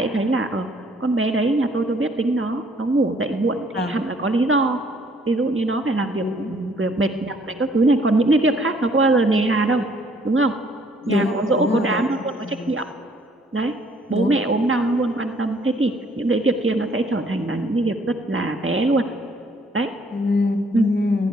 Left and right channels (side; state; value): both; normal; correlation 0.62